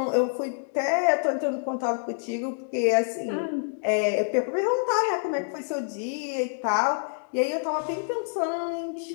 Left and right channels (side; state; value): right; silent; digital silence